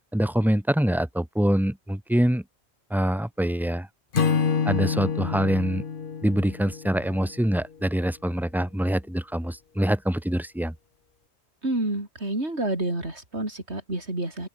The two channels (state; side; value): normal; both; correlation 0.64